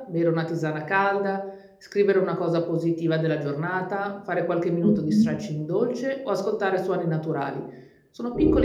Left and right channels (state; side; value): identical; both; correlation 1.00